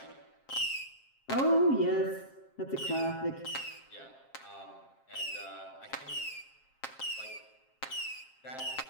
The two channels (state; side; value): late; right; 7.5 ms